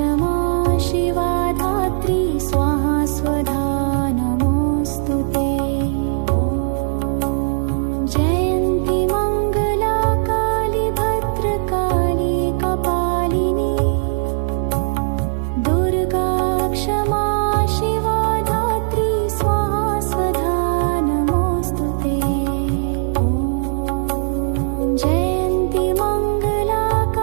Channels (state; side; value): silent; left; digital silence